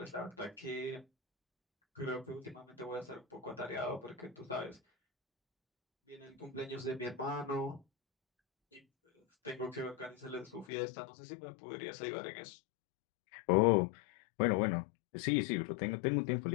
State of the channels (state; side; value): drops out; right; at 10.7 s